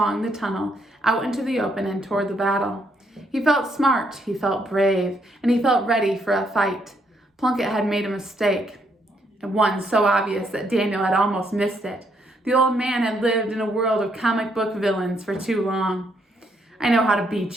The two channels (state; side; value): normal; both; correlation 0.73